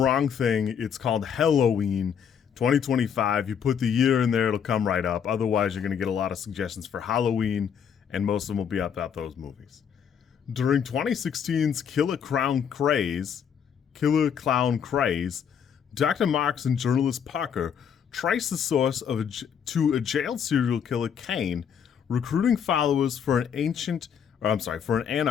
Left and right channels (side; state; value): right; quieter; 7.8 dB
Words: thing. It's called Helloween 2025. You put the year in there, it'll come right up. Otherwise, you're going to get a lot of suggestions for Halloween, and most of them will be about those movies. During 2016's Killer Clown Craze, Dr. Marks and journalist Parker trace the source to a jailed serial killer Kane, recruiting followers for an